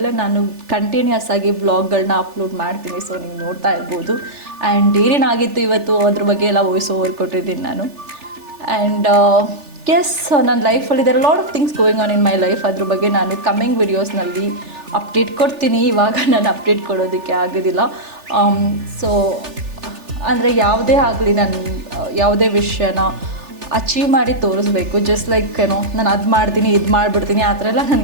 ನಾನು ಕಂಟಿನ್ಯೂಸ್ ಆಗಿ ವ್ಲಾಗ್ಗಳನ್ನ ಅಪ್ಲೋಡ್ ಮಾಡ್ತೀನಿ. ಸೊ ನೀವು ನೋಡ್ತಾ ಇರ್ಬೋದು. ಆ್ಯಂಡ್ ಏನೇನಾಗಿತ್ತು ಇವತ್ತು ಅದ್ರ ಬಗ್ಗೆ ಎಲ್ಲ ವಾಯ್ಸ್ ಓವರ್ ಕೊಟ್ಟಿದ್ದೀನಿ ನಾನು. ಆ್ಯಂಡ್ ಎಸ್, ನನ್ನ ಲೈಫಲ್ಲಿ there lot of things going on in my life. ಅದ್ರ ಬಗ್ಗೆ ನಾನು ಕಮ್ಮಿಂಗ್ ವಿಡಿಯೋಸ್ನಲ್ಲಿ ಅಪ್ಡೇಟ್ ಕೊಡ್ತೀನಿ. ಇವಾಗ ನಾನು ಅಪ್ಡೇಟ್ ಕೊಡೋದಕ್ಕೆ ಆಗೋದಿಲ್ಲ. ಸೊ ಅಂದರೆ ಯಾವುದೇ ಆಗಲಿ ನಾನು ಯಾವುದೇ ವಿಷಯನ ಅಚೀವ್ ಮಾಡಿ ತೋರಿಸ್ಬೇಕು. ಜಸ್ಟ್ ಲೈಕ್ ಏನೋ ನಾನು ಅದು ಮಾಡ್ತೀನಿ ಇದು ಮಾಡಿಬಿಡ್ತೀನಿ ಆ ಥರ ಎಲ್ಲ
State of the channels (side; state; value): left; late; 3.4 ms